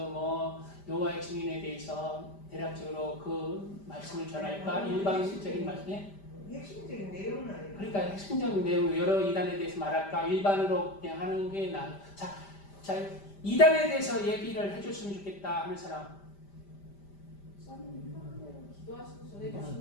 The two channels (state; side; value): late; right; 5.1 ms